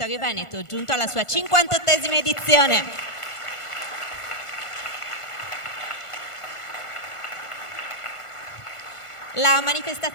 Veneto, giunto alla sua 58esima edizione. La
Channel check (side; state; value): right; late; 1.5 ms